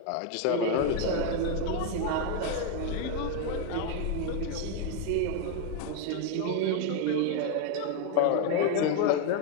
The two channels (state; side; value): different; both; correlation 0.01